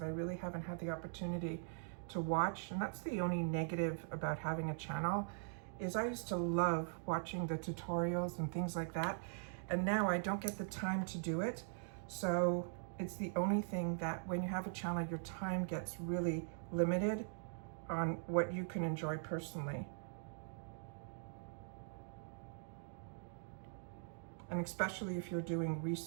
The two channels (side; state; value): left; silent; digital silence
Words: I really haven't had the opportunity to watch, and that's the only negative about having a channel, is I used to love watching the tutorials and things like that, and now I don't get the time to do it. So it's the only thing that when you have a channel, your time gets really limited on what you can enjoy personally. And especially if you're doing